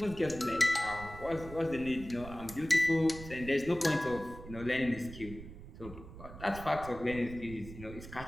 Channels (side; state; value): right; noise; rumble, 14 dB below the sound